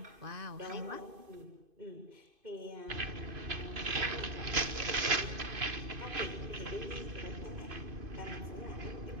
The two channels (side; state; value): left; late; 2.5 ms